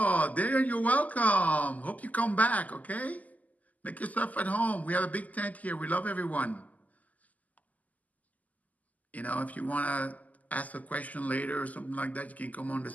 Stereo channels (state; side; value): late; right; 0.077 ms